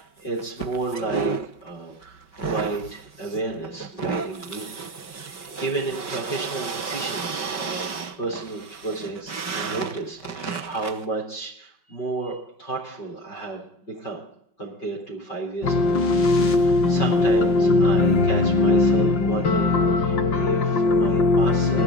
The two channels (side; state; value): right; late; 5.2 ms